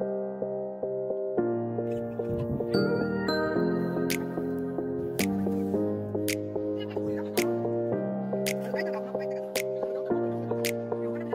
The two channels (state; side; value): identical; both; correlation 1.00